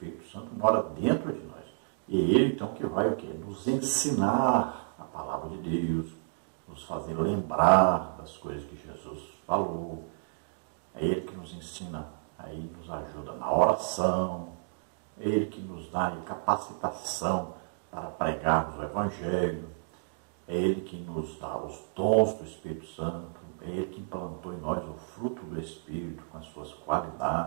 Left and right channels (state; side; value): silent; left; digital silence